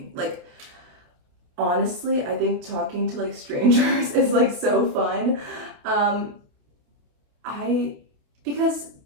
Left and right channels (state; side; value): late; left; 28 ms